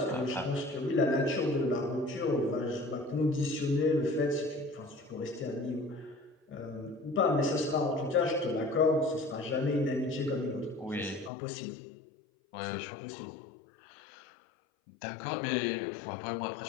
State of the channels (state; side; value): drops out; right; at 11.3 s